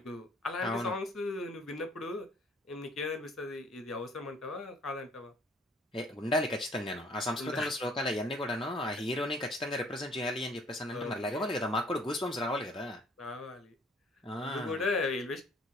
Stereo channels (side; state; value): both; normal; correlation 0.58